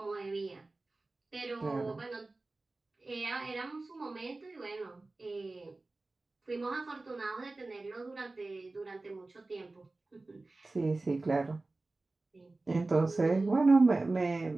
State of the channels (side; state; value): left; quieter; 3.2 dB